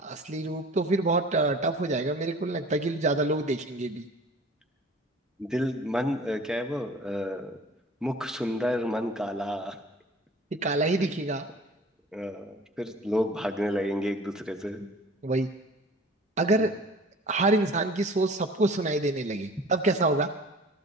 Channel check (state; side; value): normal; both; correlation 0.45